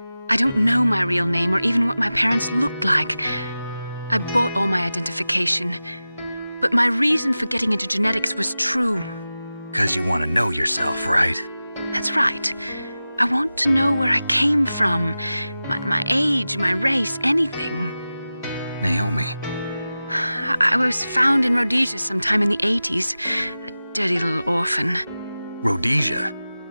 I don't know my real name or even what my parents looked like. I bought all my identification, but my reason for getting into genetics was true. 'Cause you want to know yourself, right? That's right. I want to know where I came from, my age, my race, anything. Naomi. I was found in Rhodesia sometime in the 80s, a dirty little orphan. Rhodesia?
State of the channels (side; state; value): both; inverted; correlation -0.95